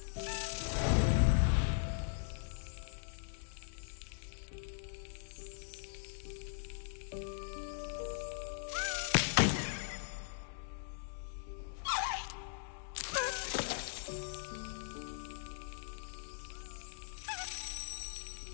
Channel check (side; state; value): right; silent; digital silence